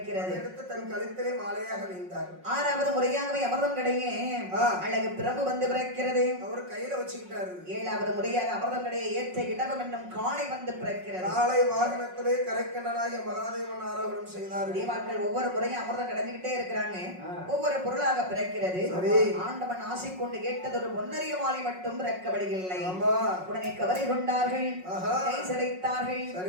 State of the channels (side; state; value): left; late; 5.5 ms